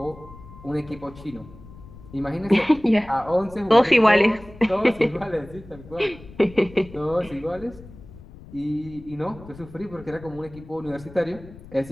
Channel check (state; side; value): noise; left; rumble, 19 dB below the sound